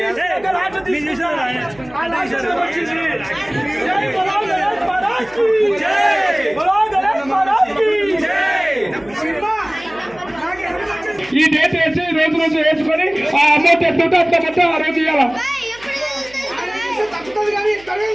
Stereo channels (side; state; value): right; noise; hum, 24 dB below the sound